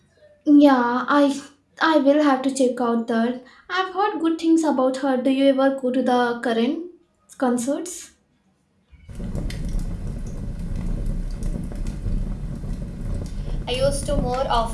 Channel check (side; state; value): both; identical; correlation 1.00